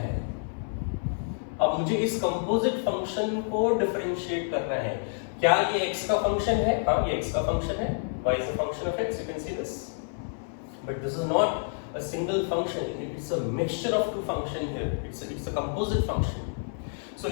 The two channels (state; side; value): silent; right; 57 dB below the other